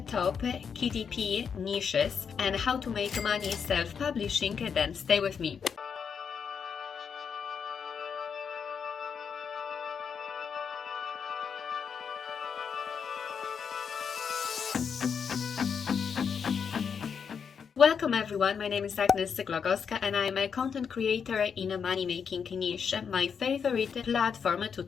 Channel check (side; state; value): right; quieter; 6.7 dB